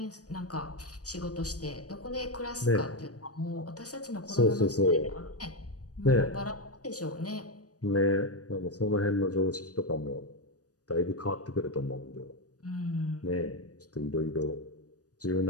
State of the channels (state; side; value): late; right; 0.67 ms